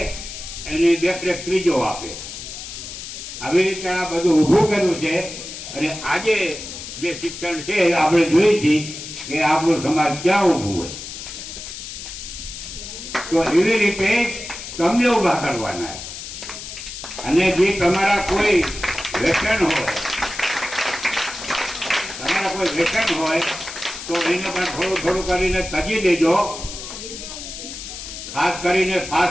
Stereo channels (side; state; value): left; noise; hiss, 10 dB below the sound